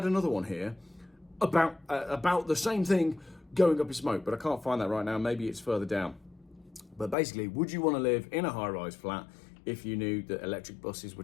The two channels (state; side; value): drops out; right; at 7.2 s